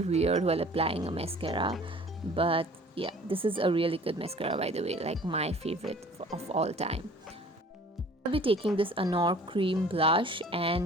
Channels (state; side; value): normal; both; correlation 0.49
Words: weird while applying a mascara, but yeah, this is a really good mascara, by the way, like my favorite of all time. I'll be taking this Anour cream blush